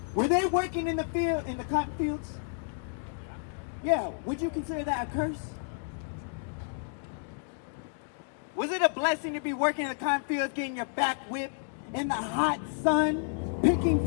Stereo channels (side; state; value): right; silent; digital silence